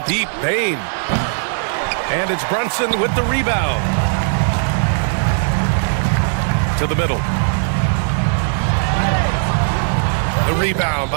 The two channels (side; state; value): left; silent; 67 dB below the other